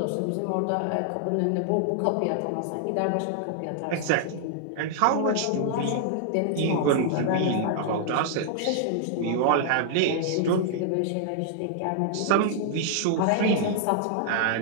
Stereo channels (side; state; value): both; different; correlation -0.01